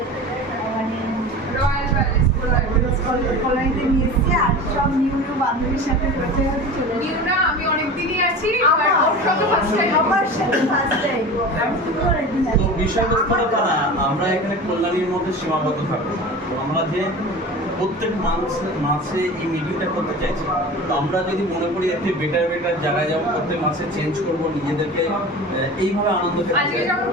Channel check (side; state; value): both; normal; correlation 0.34